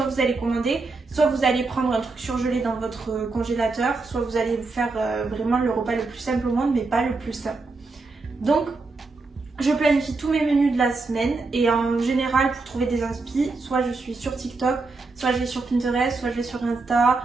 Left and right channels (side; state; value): left; quieter; 3.8 dB